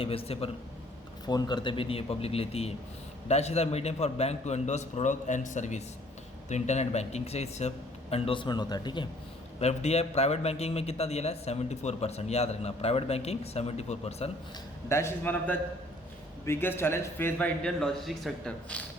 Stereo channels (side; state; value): both; normal; correlation 0.59